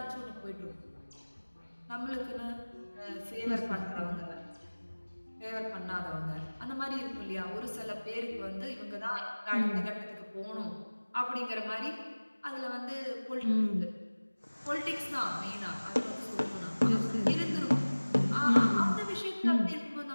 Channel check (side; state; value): both; inverted; correlation -1.00